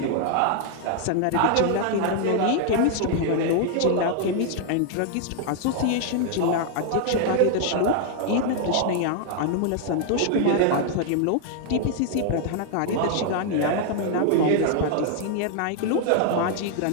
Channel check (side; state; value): both; different; correlation 0.00